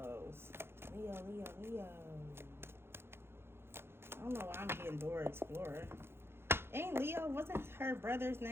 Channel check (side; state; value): left; late; 0.11 ms